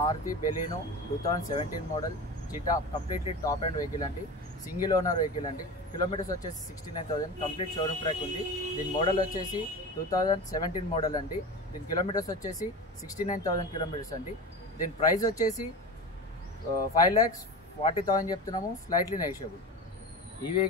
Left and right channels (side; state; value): both; normal; correlation 0.29